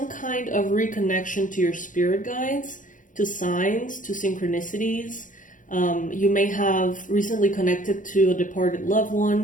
kind of reconnection to your spirit guides, to signs, to synchronicities. You may have recently connected to a departed loved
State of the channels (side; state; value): right; late; 0.38 ms